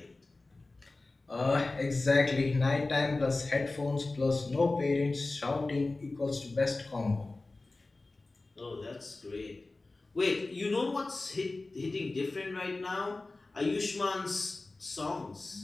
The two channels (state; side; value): quieter; right; 3.2 dB